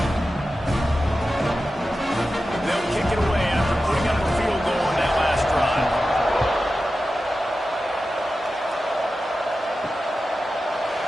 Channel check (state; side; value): normal; both; correlation 0.93